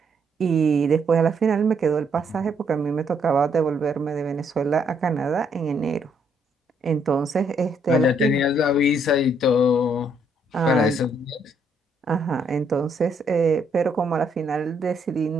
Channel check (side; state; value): both; normal; correlation 0.71